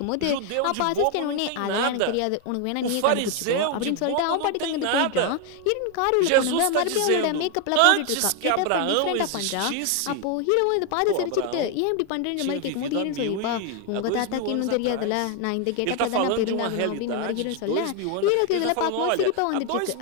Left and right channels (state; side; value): different; both; correlation 0.01